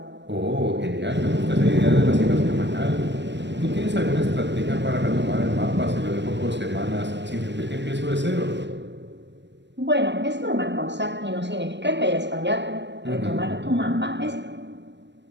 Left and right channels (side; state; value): left; late; 0.52 ms